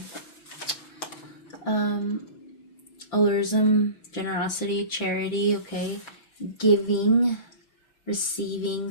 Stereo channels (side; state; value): right; late; 5.9 ms